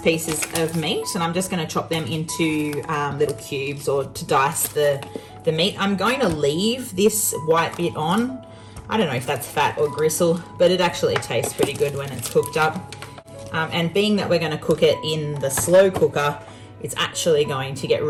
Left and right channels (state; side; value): identical; both; correlation 1.00